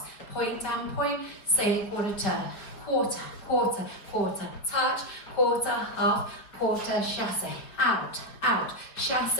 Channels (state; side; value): late; right; 4.8 ms